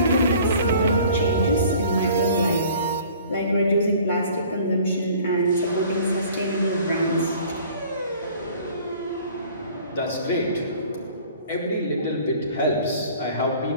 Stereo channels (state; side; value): inverted; both; correlation -0.50